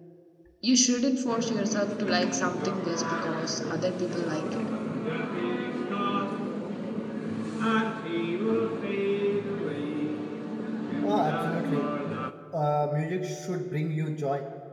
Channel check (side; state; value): both; identical; correlation 1.00